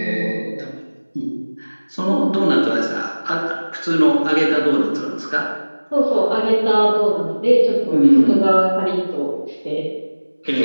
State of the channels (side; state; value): both; inverted; correlation -1.00